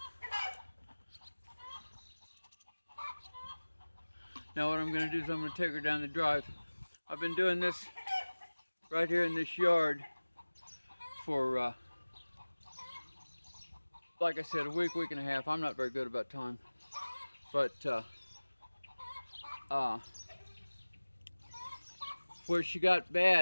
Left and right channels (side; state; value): both; inverted; correlation -1.00